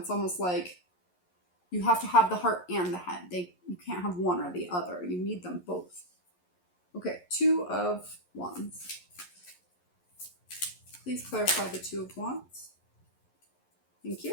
almost like you have to have the heart and the head. You can't have one or the other. You need them both. Okay, Two of Wands. Please clarify the Two of Wands. Thank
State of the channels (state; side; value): late; right; 11 ms